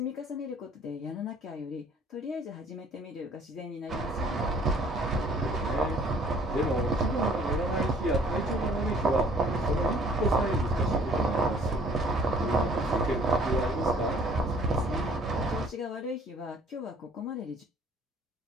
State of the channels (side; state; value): both; normal; correlation 0.56